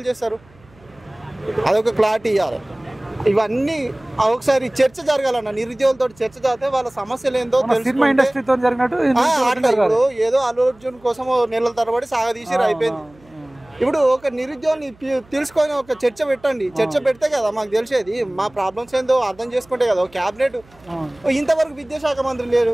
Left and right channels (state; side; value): noise; right; hum, 28 dB below the sound